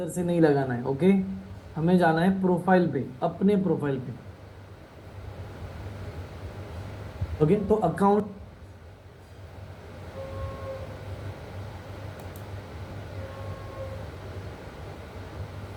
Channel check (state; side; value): identical; both; correlation 1.00